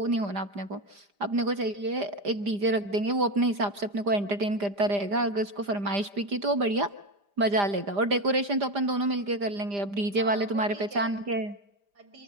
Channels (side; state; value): left; late; 5.0 ms